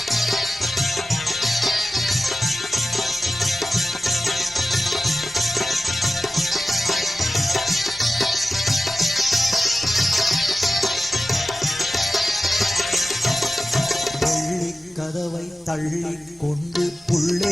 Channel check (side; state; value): both; normal; correlation 0.95